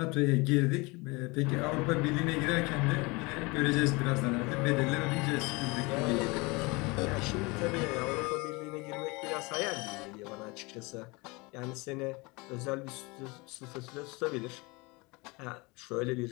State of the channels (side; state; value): right; quieter; 26.0 dB